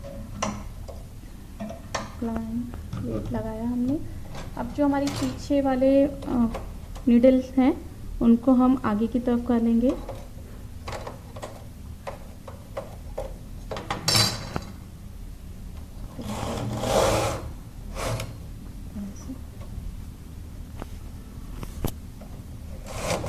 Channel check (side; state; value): both; identical; correlation 1.00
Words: वेट लगाया हमने। अब जो हमारी पीछे वाले नीडल्स हैं उनको हम आगे की तरफ कर लेंगे।